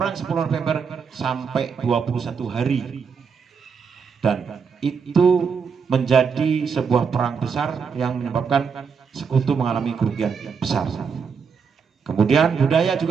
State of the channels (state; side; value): quieter; left; 6.1 dB